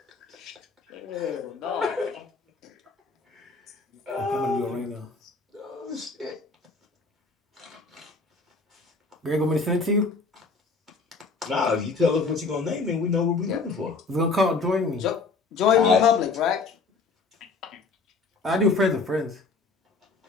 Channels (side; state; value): right; quieter; 4.1 dB